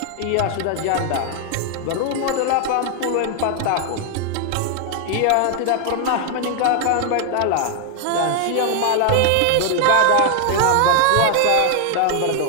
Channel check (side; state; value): both; different; correlation 0.00